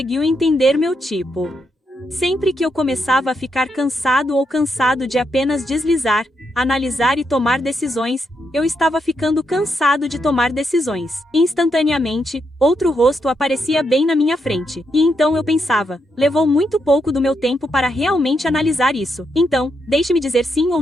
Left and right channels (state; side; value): normal; both; correlation 0.81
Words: entender meu tipo. Sempre que eu começava a ficar cansado ou cansado de apenas deslizar, analisar e tomar decisões, eu estava ficando cansado de tomar decisões. Instantaneamente, outro rosto aparecia bem na minha frente. E então eu pensava, levou muito pouco do meu tempo para realmente analisar isso. Então, deixe-me dizer sim ou